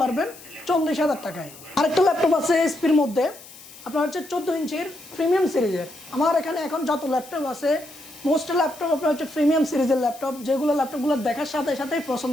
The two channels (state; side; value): noise; left; hiss, 19 dB below the sound